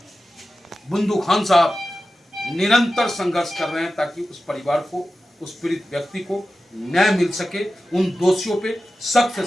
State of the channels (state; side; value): normal; both; correlation 0.93